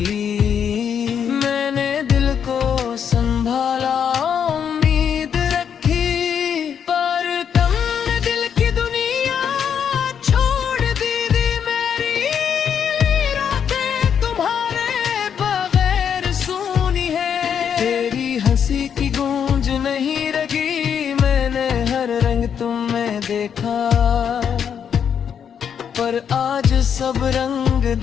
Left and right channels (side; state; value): right; quieter; 7.9 dB